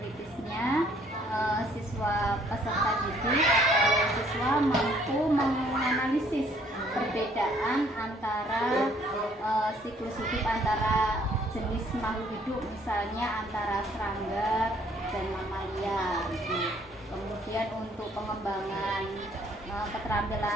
siswa peserta didik atau siswa mampu menganalisis perbedaan antara siklus hidup antara jenis makhluk hidup, misalnya antara serangga dan mamalia gitu. Kemudian untuk pengembangan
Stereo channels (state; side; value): normal; both; correlation 0.62